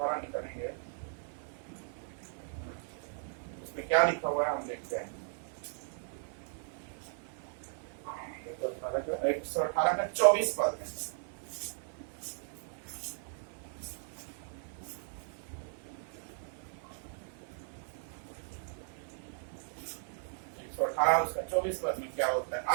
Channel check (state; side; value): silent; left; 53 dB below the other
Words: निकलेंगे, उसमें क्या लिखा हुआ है हम देखते हैं। 118 का 24 पद है। उसका 24 पद में क्या होता है,